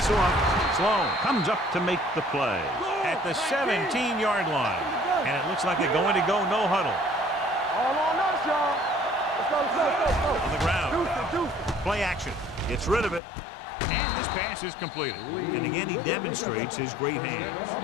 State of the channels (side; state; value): right; drops out; at 13.2 s